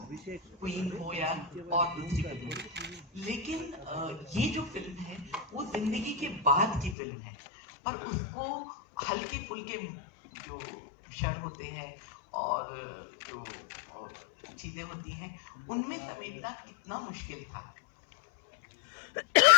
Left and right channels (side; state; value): right; drops out; at 7.0 s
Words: क्वीन हो या और दूसरी फिल्म हो। लेकिन ये जो फिल्म है वो जिंदगी के बाद की फिल्म है, और उसको हल्के फुल्के जो क्षण होते हैं और जो चीजें होती हैं उनमें समेटना कितना मुश्किल था।